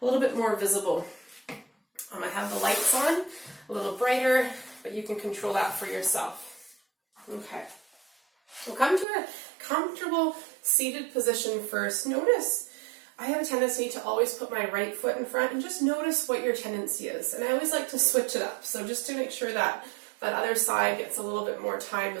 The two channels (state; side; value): drops out; left; at 9.1 s